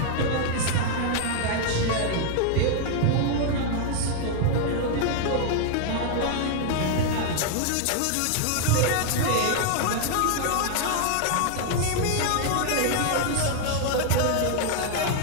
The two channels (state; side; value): different; both; correlation 0.00